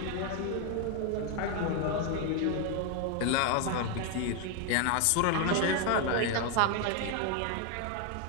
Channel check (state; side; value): different; both; correlation 0.01